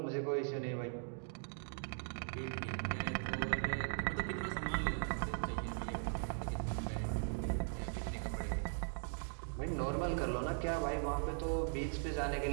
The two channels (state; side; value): silent; left; 51 dB below the other